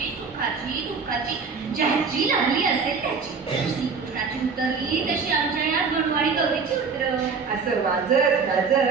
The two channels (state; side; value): quieter; left; 5.2 dB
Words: सुखाची, दुःखाची, ज्याची लागली असेल त्याची. श्रीकृष्णाची उतरली तशी आमच्या या गणवाडी गौरीची उतर. असं वाजत